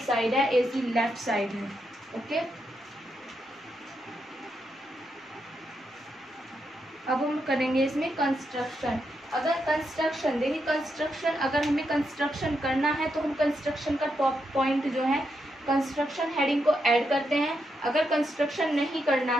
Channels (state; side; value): normal; both; correlation 0.82